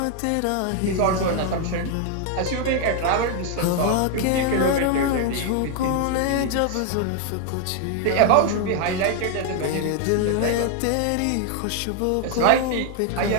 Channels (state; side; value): different; both; correlation 0.00